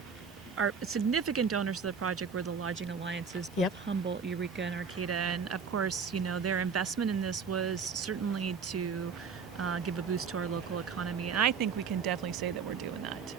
significant donors to the project were the lodging alliances, both Humboldt, Eureka, and Arcata. And of course, their investment in this was certainly to give a boost to our local economy. And I think we can definitely say that we're doing that.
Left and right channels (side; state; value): left; quieter; 5.9 dB